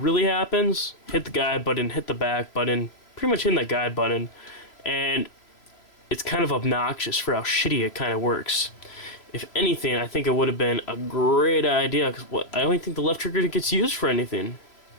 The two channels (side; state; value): right; late; 3.0 ms